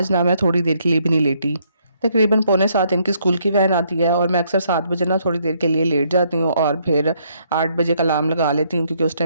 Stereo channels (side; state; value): both; inverted; correlation -0.70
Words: ना मैं थोड़ी देर के लिए भी नहीं लेटी। तकरीबन पौने 7 इनकी स्कूल की वैन आती है और मैं अक्सर 7 बजे ना थोड़ी देर के लिए लेट जाती हूँ और फिर 8 बजे का अलार्म लगा लेती हूँ क्योंकि उस